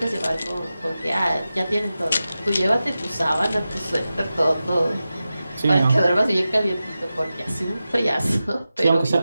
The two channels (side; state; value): both; inverted; correlation -0.93